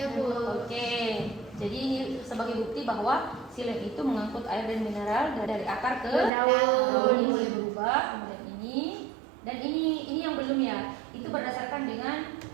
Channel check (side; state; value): left; drops out; at 6.3 s